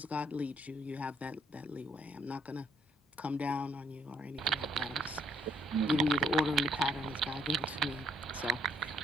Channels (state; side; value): normal; both; correlation 0.67